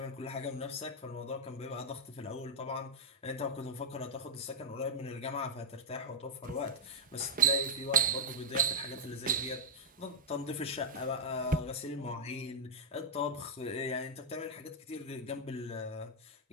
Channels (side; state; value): both; normal; correlation -0.07